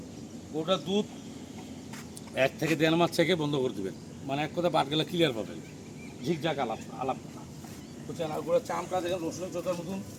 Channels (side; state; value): both; identical; correlation 1.00